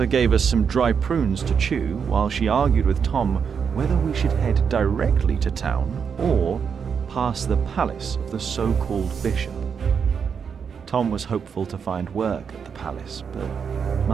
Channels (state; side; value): quieter; left; 6.6 dB